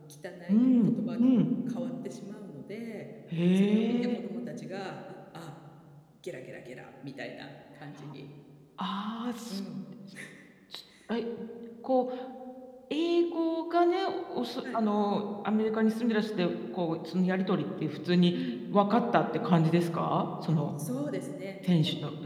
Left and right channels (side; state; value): both; identical; correlation 1.00